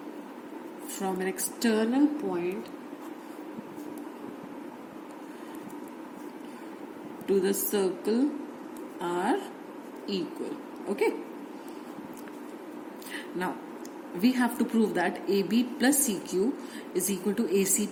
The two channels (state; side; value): identical; both; correlation 1.00